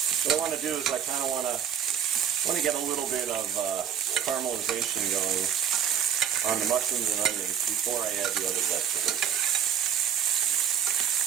What I want to do is I kind of want to get a little bit of caramelization going on the mushrooms and onions before I add the other vegetables.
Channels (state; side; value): quieter; left; 8.5 dB